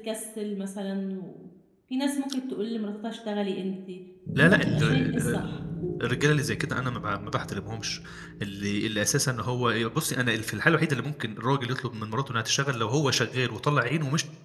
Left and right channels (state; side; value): identical; both; correlation 1.00